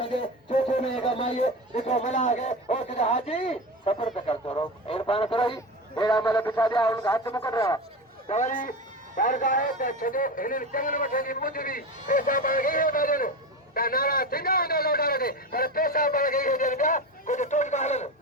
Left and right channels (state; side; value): normal; both; correlation 0.23